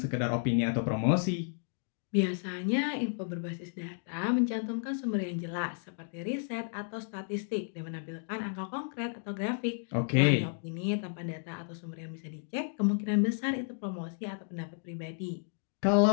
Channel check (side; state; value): right; silent; digital silence